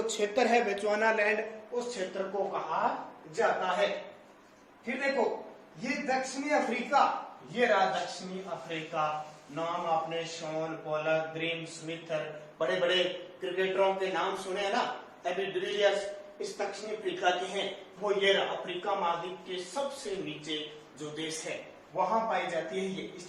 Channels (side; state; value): both; identical; correlation 1.00